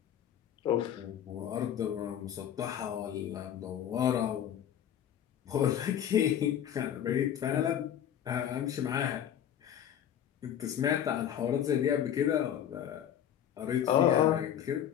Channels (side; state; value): right; quieter; 9.9 dB